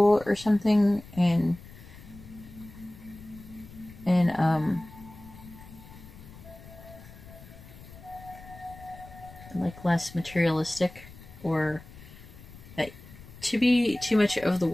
or something, and like less materialistic, or that to be too much of the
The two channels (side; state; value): left; noise; rumble, 18 dB below the sound